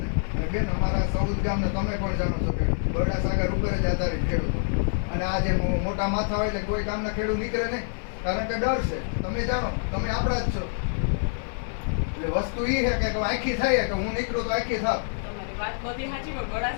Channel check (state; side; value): silent; right; 61 dB below the other